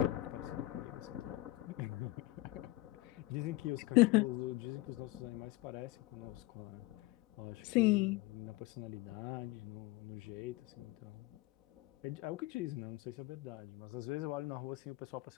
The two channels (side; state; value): right; quieter; 19.0 dB